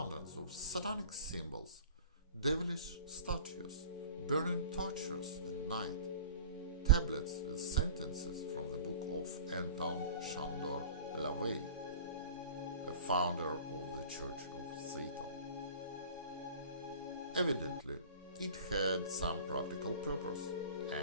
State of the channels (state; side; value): inverted; both; correlation -0.41